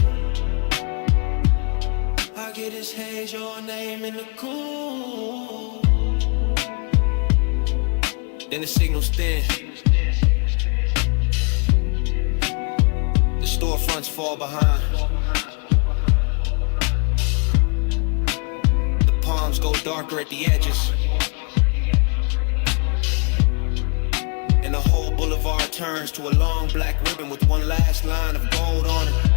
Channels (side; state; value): right; quieter; 34.7 dB